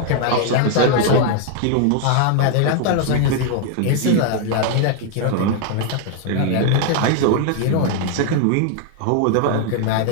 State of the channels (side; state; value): both; different; correlation 0.00